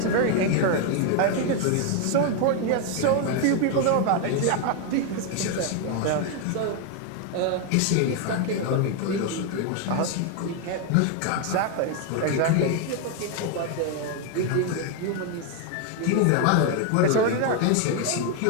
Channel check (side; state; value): both; different; correlation 0.01